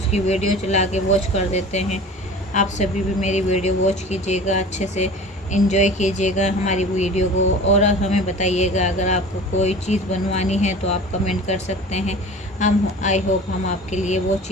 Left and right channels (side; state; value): both; normal; correlation 0.39